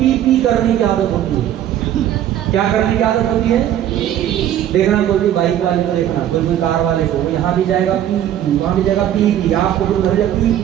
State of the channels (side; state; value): left; quieter; 11.3 dB